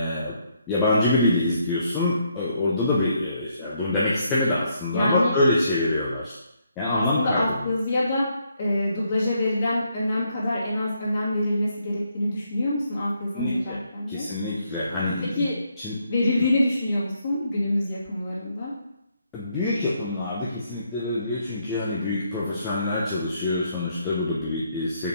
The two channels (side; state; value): both; inverted; correlation -0.73